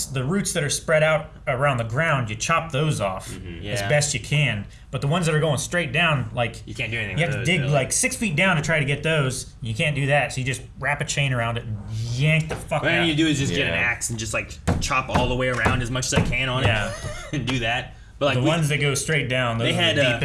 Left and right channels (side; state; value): both; identical; correlation 1.00